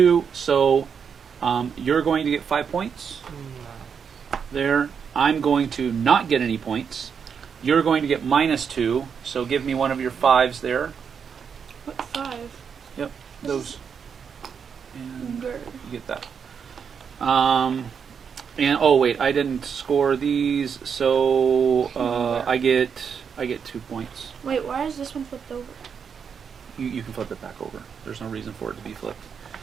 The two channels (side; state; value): left; quieter; 6.8 dB